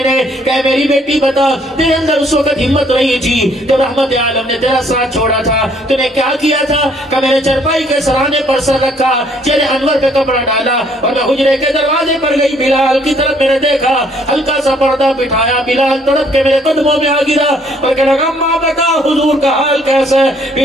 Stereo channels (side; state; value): both; normal; correlation 0.64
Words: نے۔ کہ میری بیٹی بتا تیرے اندر اس وقت ہمت نہیں تھی جب رحمت عالم نے تیرا ساتھ چھوڑا تھا، تو نے کیا کیا تھا؟ کہ میں نے چرپائی کے سرانے پر سر رکھا، چہرے انور پہ کپڑا ڈالا اور میں حجرے کے دروازے پر گئی، بلال کی طرف میں نے دیکھا، ہلکا سا پردہ بٹھایا، بلال تڑپ کے میرے قدموں میں آ گرا اور کہنے لگا اماں بتا حضور کا حال کیسا ہے؟